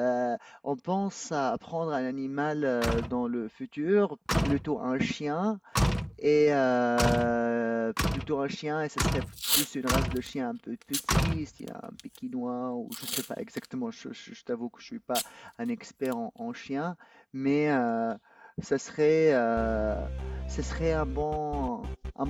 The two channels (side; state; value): both; identical; correlation 1.00